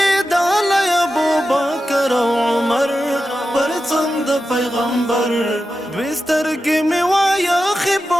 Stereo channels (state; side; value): normal; both; correlation 0.91